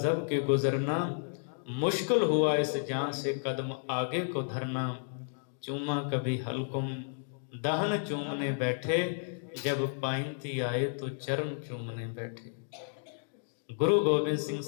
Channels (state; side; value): silent; right; digital silence